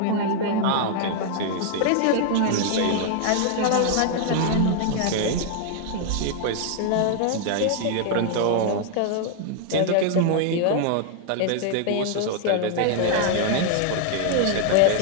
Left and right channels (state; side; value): different; both; correlation 0.00